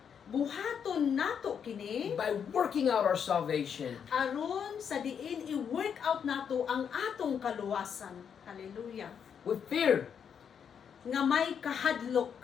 Buhaton nato kini by working out our salvation. aron sa diin i-work out nato ang atong kaluwasan. Hallelujah. With fear, Nga may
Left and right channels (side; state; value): right; quieter; 7.5 dB